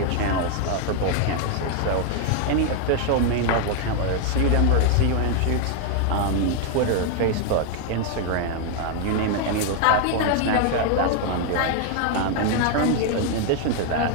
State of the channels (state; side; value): different; both; correlation 0.00